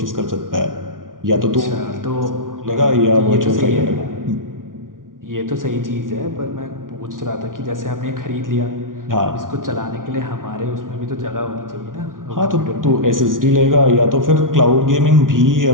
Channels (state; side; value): late; left; 0.89 ms